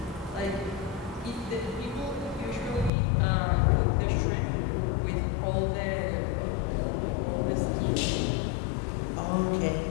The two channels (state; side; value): drops out; right; at 2.9 s